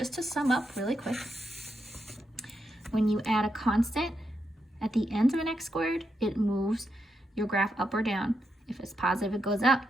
to sum up really quick, when you add a constant at the end of an x squared, it moves your graph up or down. If it's positive, it goes up.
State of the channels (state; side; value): normal; both; correlation 0.83